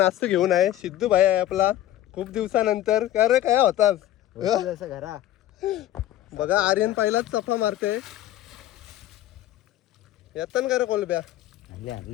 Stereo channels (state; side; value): quieter; right; 13.4 dB